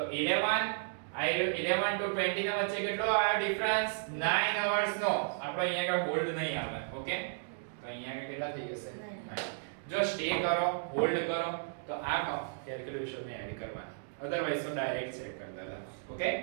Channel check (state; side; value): silent; left; digital silence